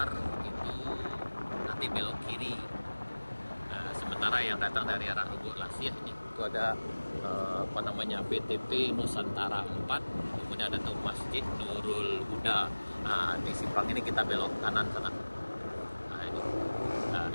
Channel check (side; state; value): both; inverted; correlation -1.00